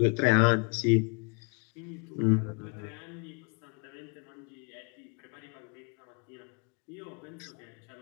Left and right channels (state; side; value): quieter; right; 34.7 dB